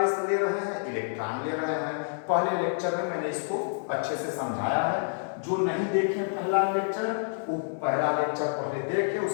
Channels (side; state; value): right; silent; digital silence